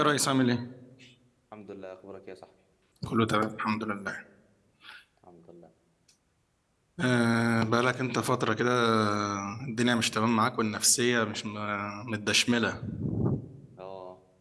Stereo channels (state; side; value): identical; both; correlation 1.00